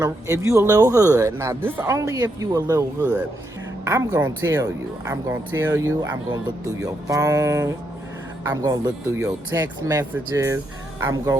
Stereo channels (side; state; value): both; normal; correlation 0.79